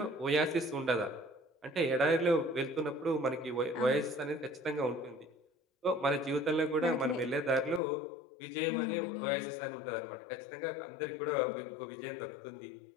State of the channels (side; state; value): right; drops out; at 7.8 s